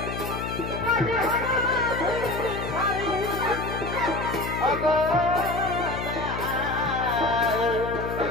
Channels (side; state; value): left; noise; hum, 6 dB below the sound